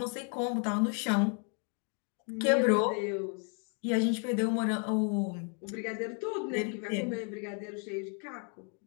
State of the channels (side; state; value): right; quieter; 39.1 dB